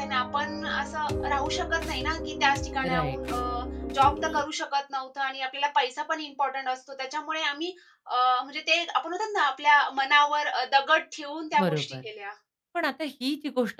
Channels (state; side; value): identical; both; correlation 1.00